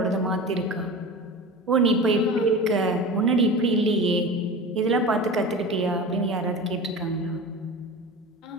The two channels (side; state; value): both; normal; correlation 0.32